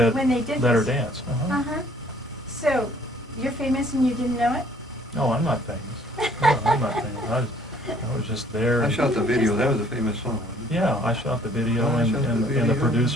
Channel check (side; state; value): both; normal; correlation 0.58